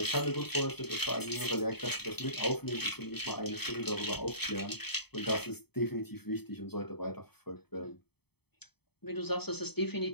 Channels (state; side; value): late; right; 0.97 ms